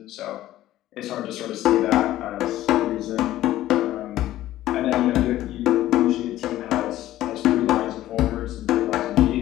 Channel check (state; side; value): quieter; right; 14.3 dB